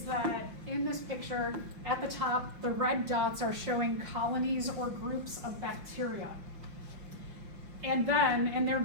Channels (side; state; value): left; late; 5.7 ms